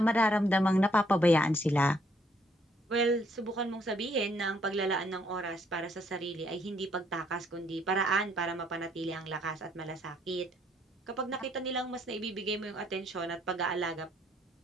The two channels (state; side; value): normal; both; correlation 0.68